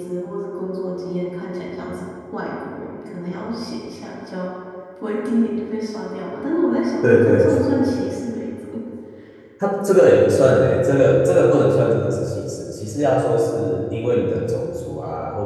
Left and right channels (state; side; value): identical; both; correlation 1.00